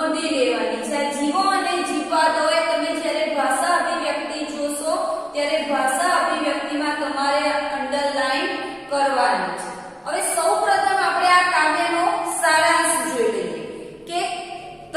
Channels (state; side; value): identical; both; correlation 1.00